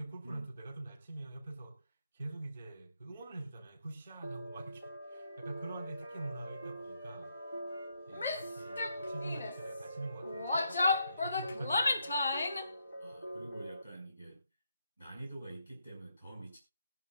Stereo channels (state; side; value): inverted; both; correlation -0.79